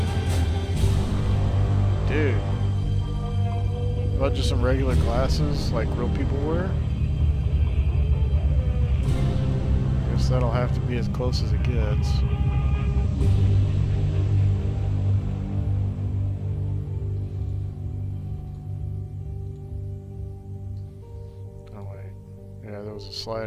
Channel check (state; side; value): identical; both; correlation 1.00